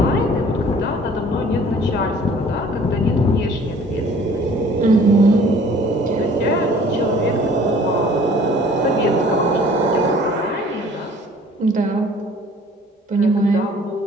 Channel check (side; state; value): both; normal; correlation 0.52